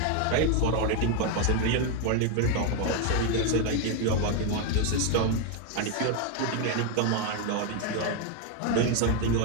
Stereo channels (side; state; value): both; different; correlation 0.01